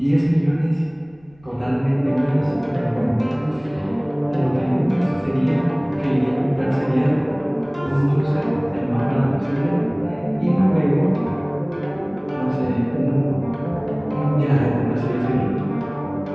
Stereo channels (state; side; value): noise; left; rumble, 29 dB below the sound